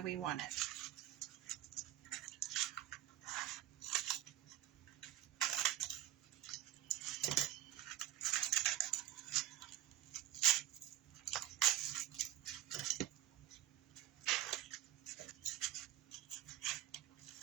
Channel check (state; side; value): quieter; left; 13.5 dB